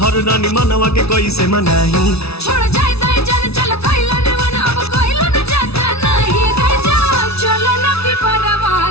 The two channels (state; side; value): late; right; 0.79 ms